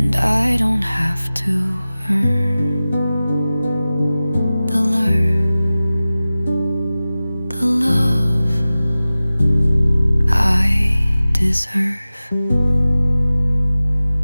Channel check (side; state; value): both; inverted; correlation -0.97